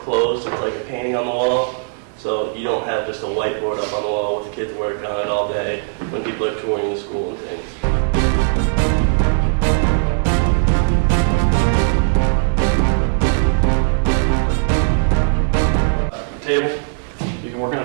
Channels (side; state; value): left; silent; digital silence